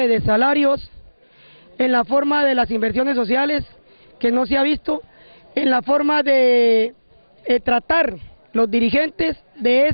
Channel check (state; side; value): inverted; both; correlation -1.00